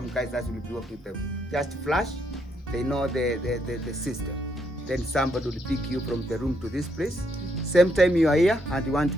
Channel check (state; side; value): normal; both; correlation 0.75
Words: guys that will be working with them. Just flash, they know the system. Then somebody will pick you from the room to this place. Same time you are here and you want to